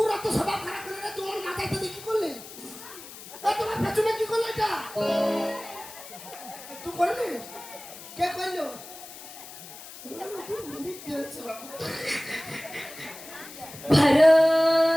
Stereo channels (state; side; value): noise; left; hiss, 15 dB below the sound